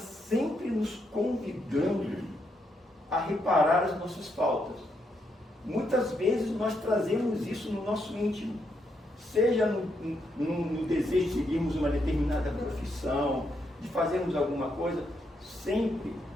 nos convidando a reparar as nossas faltas. Muitas vezes nós trazemos isso no nosso íntimo, seja no desejo de seguirmos uma determinada profissão, de fazermos alguma coisa, sempre,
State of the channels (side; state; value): both; normal; correlation 0.79